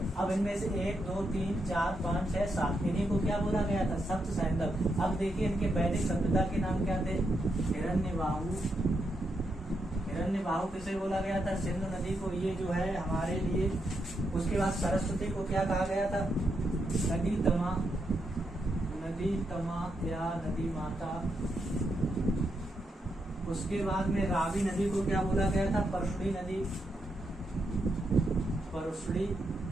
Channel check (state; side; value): normal; both; correlation 0.82